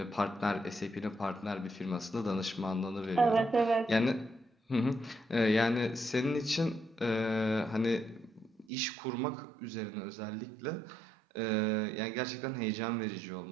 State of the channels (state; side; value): drops out; left; at 8.7 s